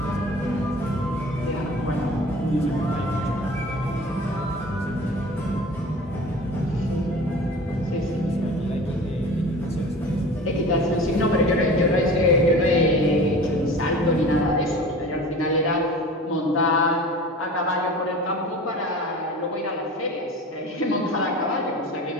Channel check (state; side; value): normal; both; correlation 0.39